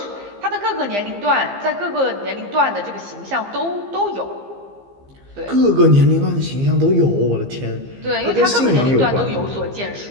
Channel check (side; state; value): left; late; 15 ms